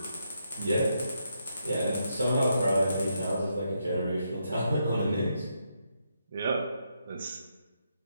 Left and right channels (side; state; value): both; inverted; correlation -0.80